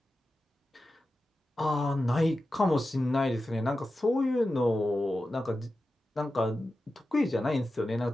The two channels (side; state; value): both; normal; correlation 0.93